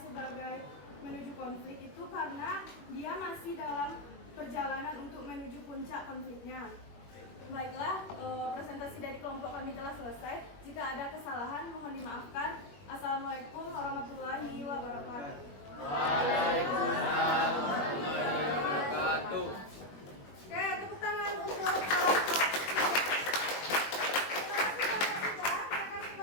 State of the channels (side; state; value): right; late; 21 ms